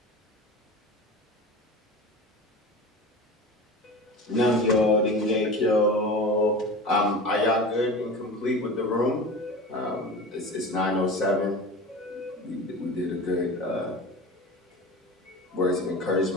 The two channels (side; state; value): both; normal; correlation 0.32